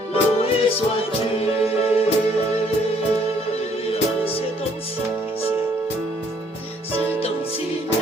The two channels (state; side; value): normal; both; correlation 0.64